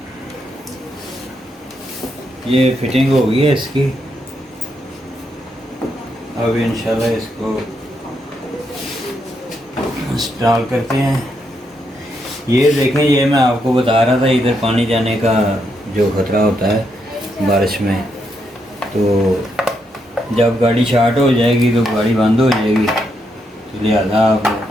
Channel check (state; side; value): normal; both; correlation 0.79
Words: ये फिटिंग हो गई है इसकी। अब इंशाल्लाह इसको इंस्टॉल करते हैं। ये देखें, ये मैं आपको बता रहा था इधर पानी जाने का जो ख़तरा होता है बारिश में, तो जब गाड़ी स्टार्ट हो जाएगी तो गाड़ी बंद हो जाएगी, तो लिहाजा आप